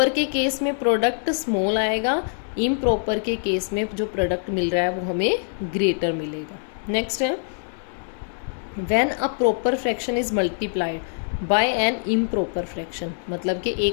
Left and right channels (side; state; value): right; silent; digital silence